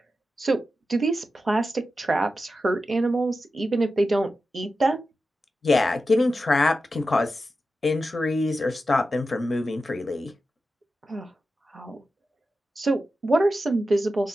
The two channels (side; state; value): both; normal; correlation 0.91